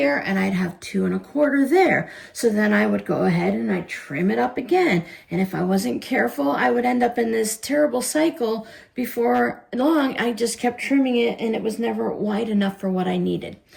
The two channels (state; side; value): identical; both; correlation 1.00